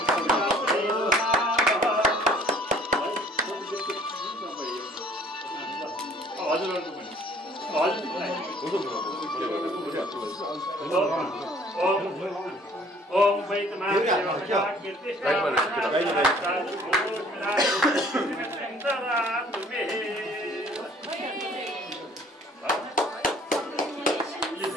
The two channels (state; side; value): normal; both; correlation 0.55